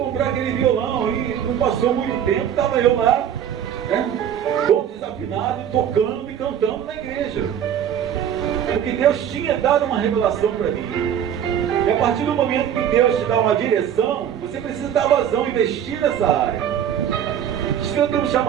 aquele violão e não passou muito tempo, estava eu lá, né, todo desafinado, tocando e cantando na igreja. Porque Deus tinha dado uma revelação para mim. E a partir do momento que Deus te dá uma direção, você precisa dar vazão, investir nessa área. Se eu tenho um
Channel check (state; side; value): quieter; left; 9.4 dB